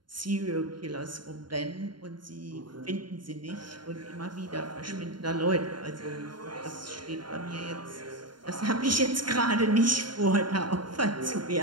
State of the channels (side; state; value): left; late; 0.72 ms